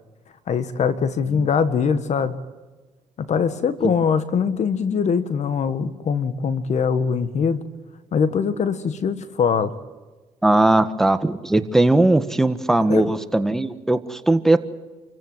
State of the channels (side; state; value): both; normal; correlation 0.76